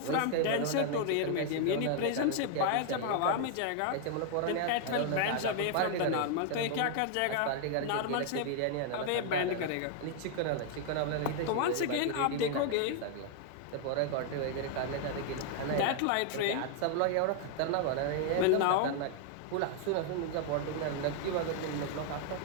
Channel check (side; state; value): both; different; correlation 0.00